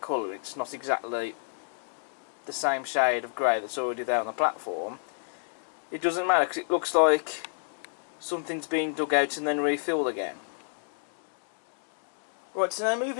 it's not exactly the same shade of grey that's already there on the platform, it doesn't matter, because it looks like something's been dug out and then refilled again. Right, so now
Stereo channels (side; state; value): right; silent; digital silence